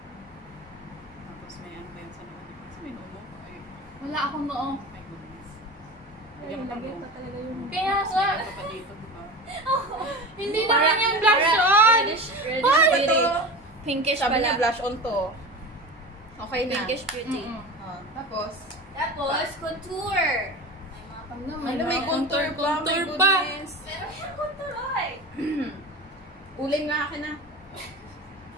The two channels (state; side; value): normal; both; correlation 0.30